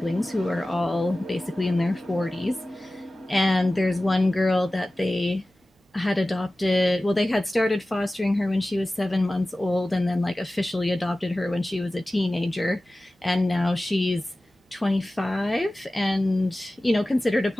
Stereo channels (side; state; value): both; normal; correlation 0.96